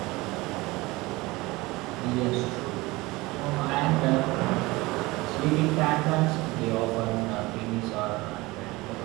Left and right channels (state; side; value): quieter; left; 21.6 dB